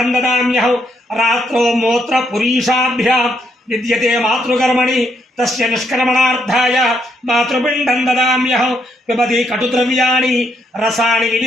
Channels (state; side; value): normal; both; correlation 0.76